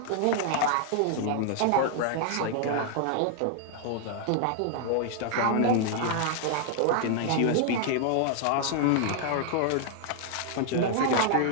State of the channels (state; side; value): different; both; correlation 0.00